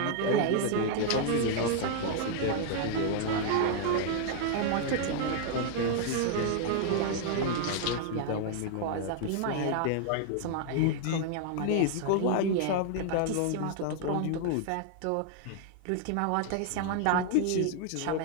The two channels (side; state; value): both; different; correlation 0.00